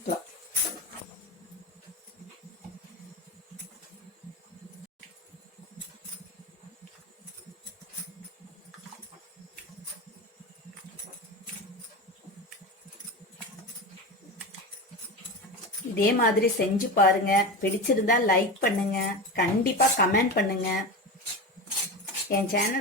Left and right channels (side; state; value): both; normal; correlation 0.24